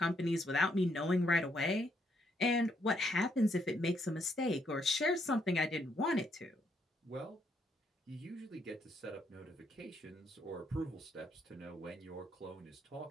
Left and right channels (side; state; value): both; normal; correlation 0.74